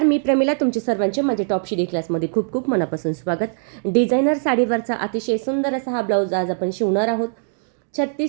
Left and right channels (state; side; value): silent; left; digital silence